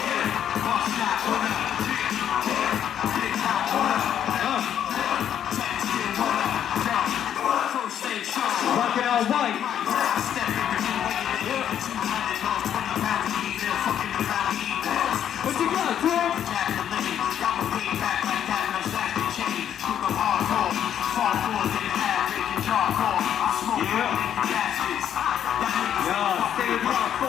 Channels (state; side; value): quieter; right; 9.7 dB